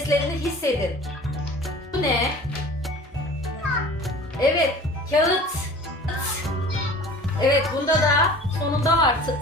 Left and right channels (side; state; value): both; normal; correlation 0.43